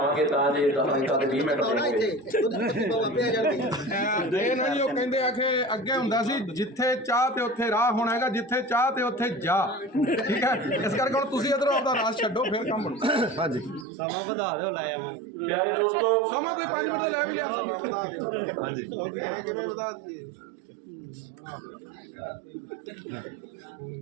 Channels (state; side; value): drops out; left; at 13.9 s